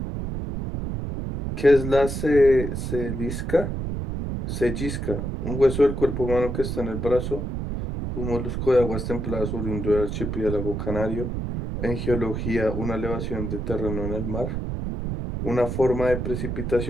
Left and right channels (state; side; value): noise; right; rumble, 3 dB below the sound